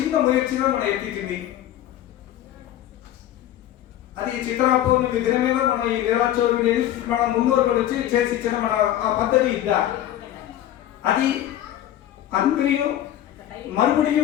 ముయర్చిగా మనం ఎత్తింది. అది చిత్రా పౌర్ణమి దినమేదో మనం ఈ నెలాచోరు మన మున్నూరు వచ్చి చేసి ఇచ్చిన మన ఆ పద్ధతి ఇద్దా. అది అందరియు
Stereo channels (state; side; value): quieter; right; 12.5 dB